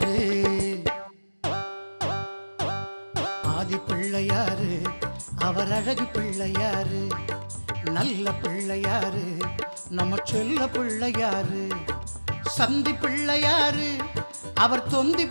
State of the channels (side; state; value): both; inverted; correlation -1.00